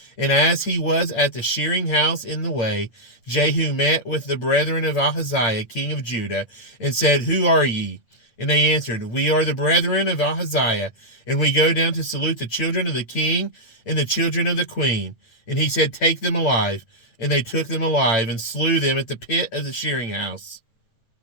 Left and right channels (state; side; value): late; right; 8.8 ms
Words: And as he was at the shearing house in the way, Jehu met with the brethren of Ahaziah, king of Judah, and said, Who are ye? And they answered, We are the brethren of Ahaziah, and we go down to salute the children of the king and the children of the queen. And he said, Take them alive. And they took them alive, and slew them at the pit of the shearing house,